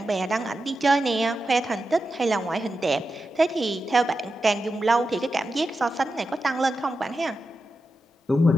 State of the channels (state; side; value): normal; both; correlation 0.90